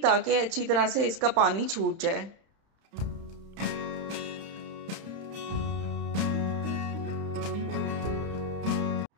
ताकि अच्छी तरह से इसका पानी छूट जाए।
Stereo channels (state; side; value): late; left; 30 ms